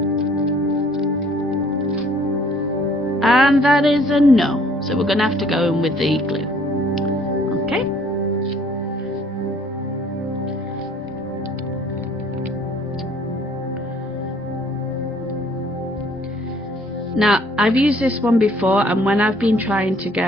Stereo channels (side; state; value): both; normal; correlation 0.59